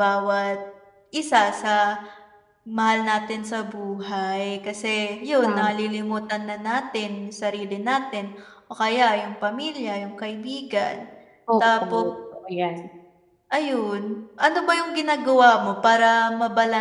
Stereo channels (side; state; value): both; identical; correlation 1.00